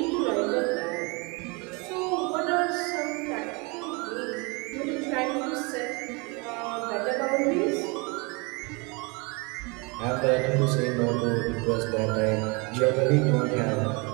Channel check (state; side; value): quieter; left; 29.4 dB